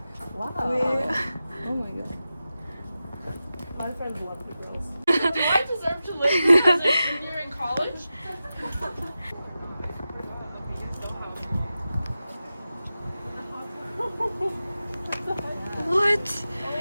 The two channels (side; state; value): both; inverted; correlation -0.93